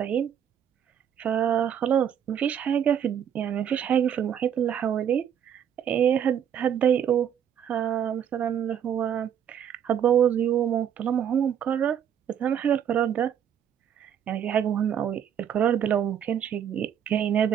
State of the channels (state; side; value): quieter; left; 8.9 dB